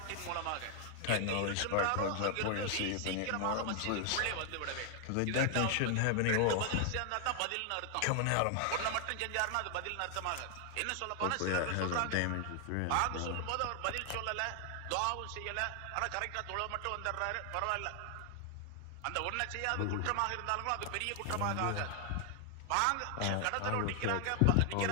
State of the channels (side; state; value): both; different; correlation 0.00